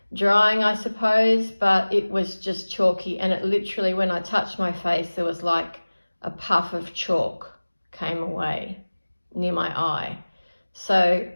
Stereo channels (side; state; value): both; inverted; correlation -1.00